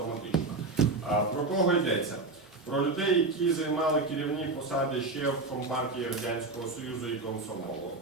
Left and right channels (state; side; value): quieter; left; 3.4 dB